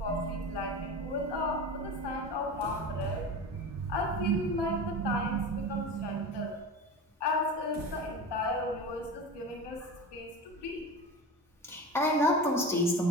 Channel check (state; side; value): normal; both; correlation 0.29